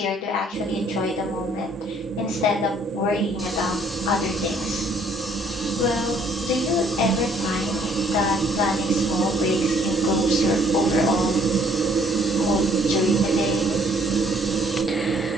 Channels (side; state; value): both; normal; correlation 0.62